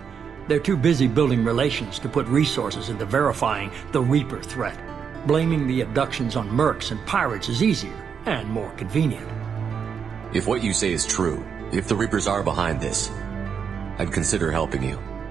They're too busy building relations to put resources into verifying the Reaper threat. Blaming the abductions on mercs and pirates is easier and more convenient. If what you say is true, if the Reapers are behind this, I'd consider helping you.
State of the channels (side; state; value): left; quieter; 6.9 dB